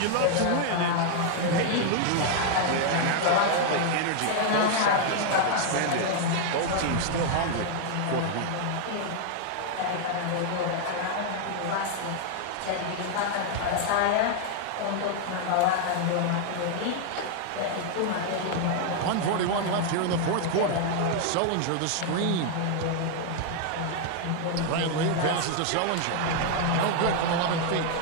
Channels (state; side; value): different; both; correlation 0.00